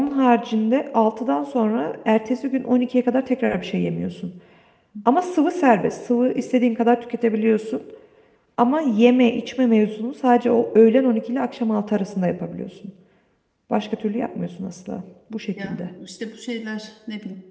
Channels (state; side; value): identical; both; correlation 1.00